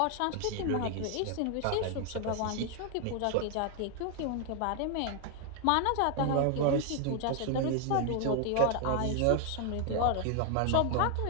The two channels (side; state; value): both; different; correlation 0.00